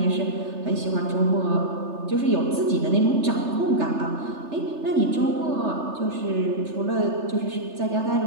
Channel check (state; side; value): late; left; 3.3 ms